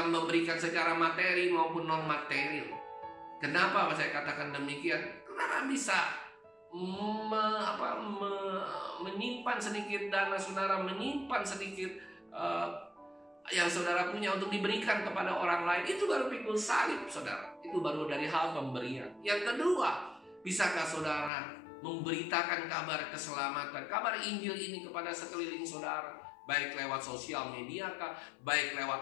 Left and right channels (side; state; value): right; drops out; at 21.3 s